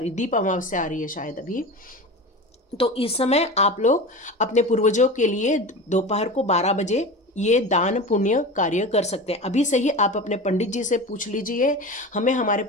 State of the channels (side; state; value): both; normal; correlation 0.30